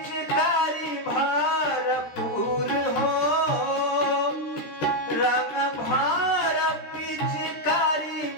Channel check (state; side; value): late; right; 13 ms